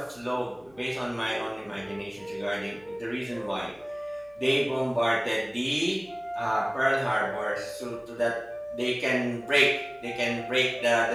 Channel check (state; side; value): noise; left; hum, 30 dB below the sound